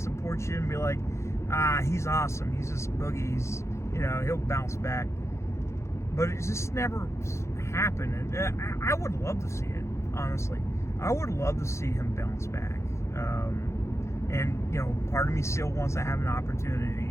you and be like, he's awesome. He's just Boogie. He's, you know, he'll bounce back. But it just never happened. And I would love to see it, honestly. I would love to see him bounce back. And, you know, part of me still wants to have an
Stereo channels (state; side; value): late; right; 0.14 ms